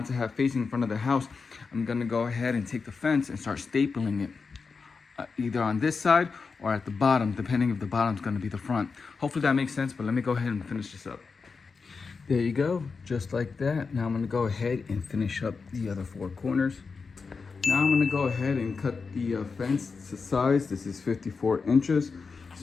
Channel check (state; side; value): quieter; right; 4.9 dB